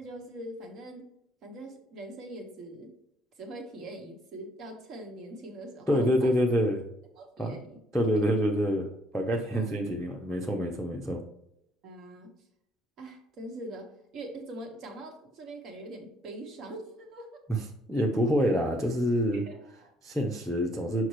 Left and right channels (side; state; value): both; normal; correlation 0.67